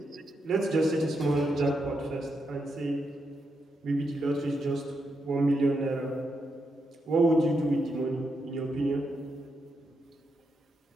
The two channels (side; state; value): both; normal; correlation 0.83